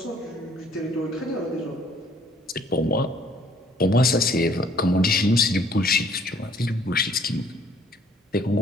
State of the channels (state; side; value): normal; both; correlation 0.60